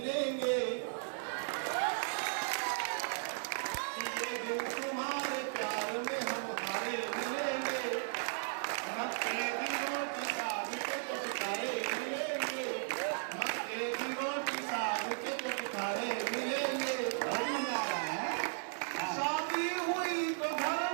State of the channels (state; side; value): silent; left; digital silence